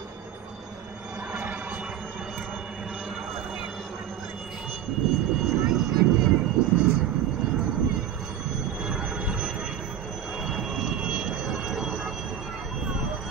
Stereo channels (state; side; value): quieter; left; 9.6 dB